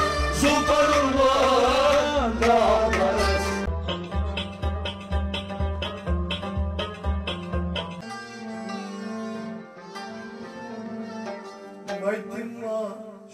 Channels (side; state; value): both; identical; correlation 1.00